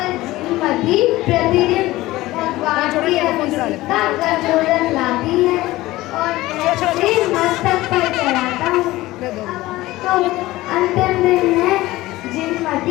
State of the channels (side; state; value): right; quieter; 17.8 dB